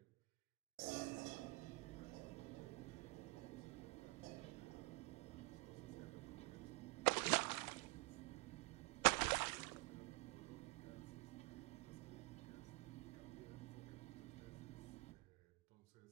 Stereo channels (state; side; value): quieter; left; 26.1 dB